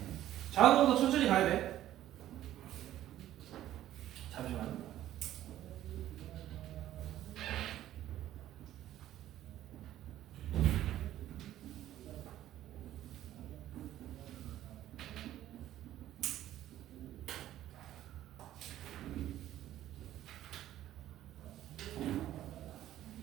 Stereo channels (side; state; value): left; quieter; 13.0 dB